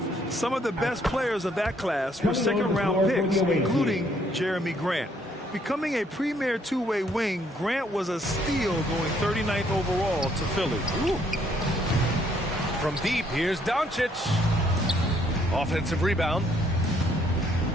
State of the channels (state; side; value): normal; both; correlation 0.67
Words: Some of the best players of that class were second-round picks, including Jeremy Grant. Becoming a premier two-way wing, Grant was a steal going 39th overall to Philly. Ooh. From deep, here's Doncic. Offensive rebound.